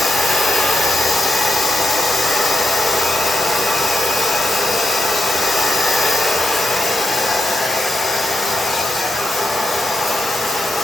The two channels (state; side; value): normal; both; correlation 0.83